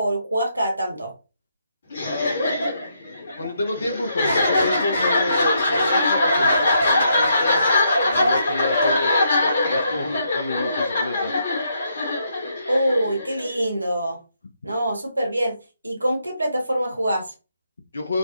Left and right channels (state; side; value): inverted; both; correlation -0.76